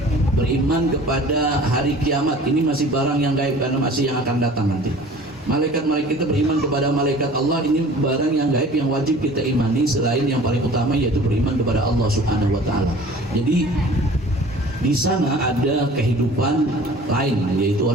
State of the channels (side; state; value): both; normal; correlation 0.46